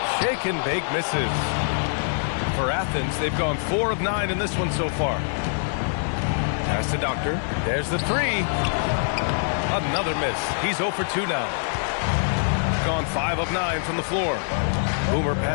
Shake and Bake misses. For Athens, they've gone 4 of 9 in this one so far. Pass to Doctor. There's the 3. Another miss. He's 0 for 2 now. Gone 5 of 9 from the floor. Boomer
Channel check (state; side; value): silent; right; digital silence